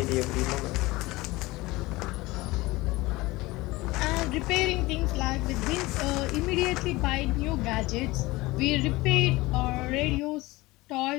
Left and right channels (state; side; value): quieter; right; 20.7 dB